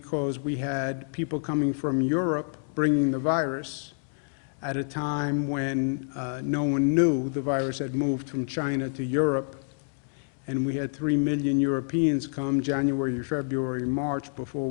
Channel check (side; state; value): right; silent; digital silence